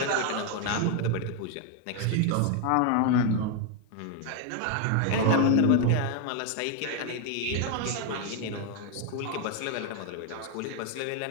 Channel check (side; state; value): both; different; correlation 0.01